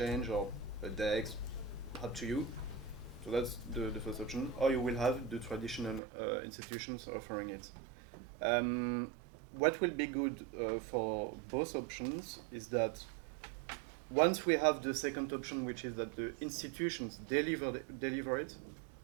or a DEX, up to you. So that's the first option. Or you will have the traditional institutions offering it. What will be good for both options is that once we have the second option, which is that the institutions deliver it,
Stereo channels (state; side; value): drops out; left; at 6.0 s